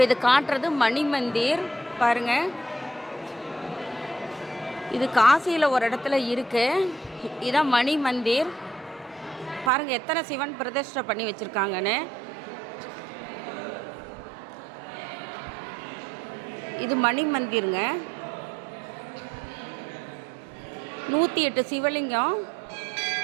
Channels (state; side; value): drops out; left; at 9.7 s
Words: இது காட்டுறது மணி மந்திர் பாருங்கள். இது காசியில் ஒரு இடத்துல இருக்குது. இதுதான் மணி மந்திர். பாருங்கள் எத்தனை சிவன் பிரதிஷ்டை பண்ணி வச்சுருக்காங்கன்னு. இது மணி மந்திருங்க. 108 சிவலிங்கம்